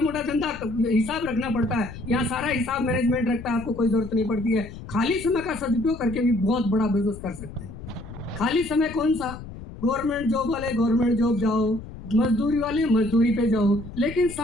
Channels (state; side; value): noise; left; rumble, 13 dB below the sound